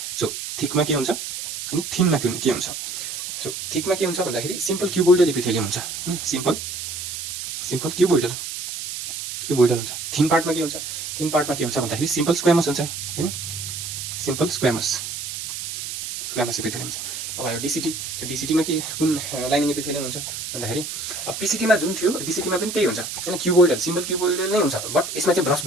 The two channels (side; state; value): right; noise; hiss, 7 dB below the sound